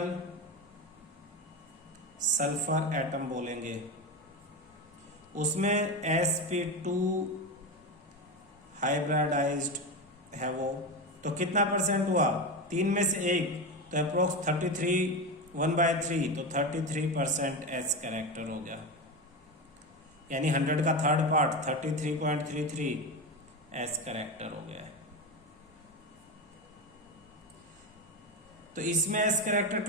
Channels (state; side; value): normal; both; correlation 0.18